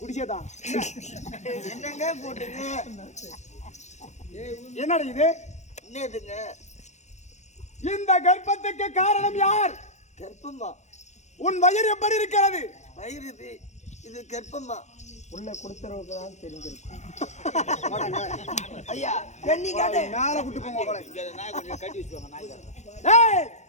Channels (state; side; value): late; right; 0.34 ms